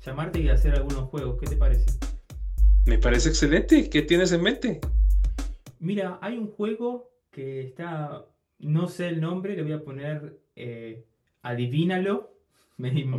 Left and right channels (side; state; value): both; identical; correlation 1.00